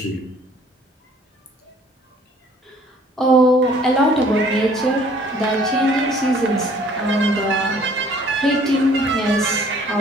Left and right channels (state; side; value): normal; both; correlation 0.57